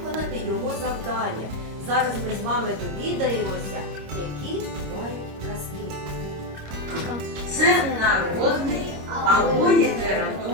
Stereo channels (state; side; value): late; left; 26 ms